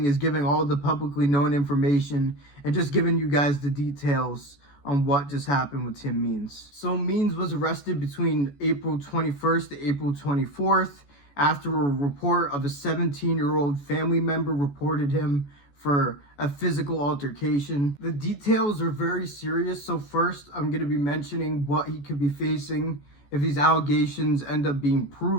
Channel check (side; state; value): right; late; 14 ms